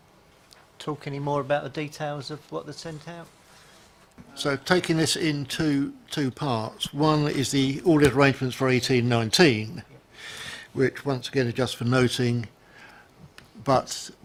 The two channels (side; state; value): both; identical; correlation 1.00